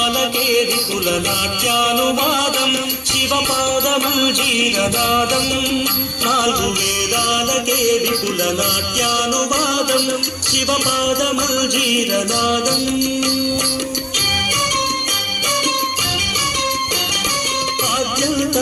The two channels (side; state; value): both; identical; correlation 1.00